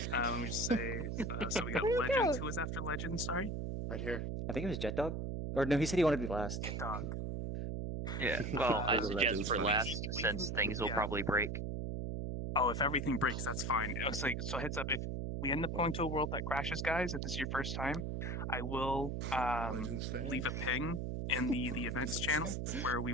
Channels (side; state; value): right; noise; hum, 3 dB below the sound